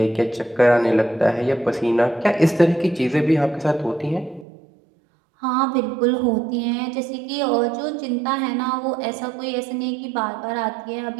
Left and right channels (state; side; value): drops out; left; at 4.5 s